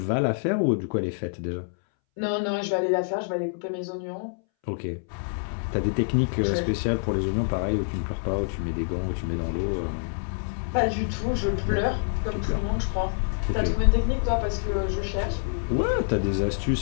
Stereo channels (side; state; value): right; silent; 61 dB below the other